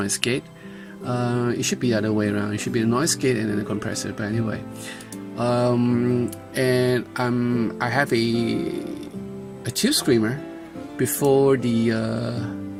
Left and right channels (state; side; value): identical; both; correlation 1.00